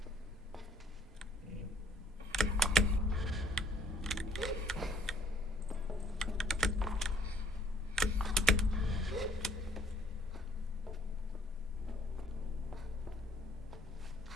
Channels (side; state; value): both; normal; correlation 0.60